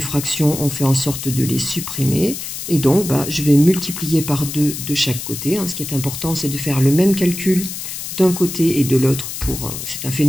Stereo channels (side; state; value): left; noise; hiss, 7 dB below the sound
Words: on fait en sorte de les supprimer. Et donc, je vais multiplier par 2 de chaque côté. Ce qui est important, c'est de faire le même calcul d'un côté et de l'autre. C'est un